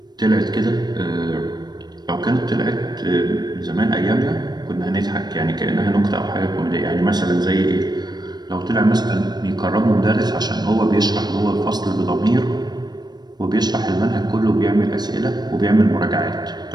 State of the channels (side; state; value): left; late; 0.20 ms